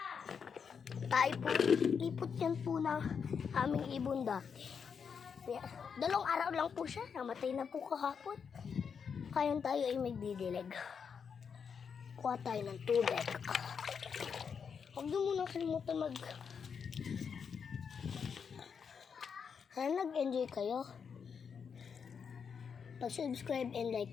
Tayo po, lipot yan po ng aming ibon dati. 2 araw lang po siya, namatay na po kahapon. Kayon tayo ay magdidilig. Kuha tayo ng tubig. Huwag nyo muna kalimutan Sana nag-enjoy kayo. Pag-subscribe and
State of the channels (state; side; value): quieter; right; 6.5 dB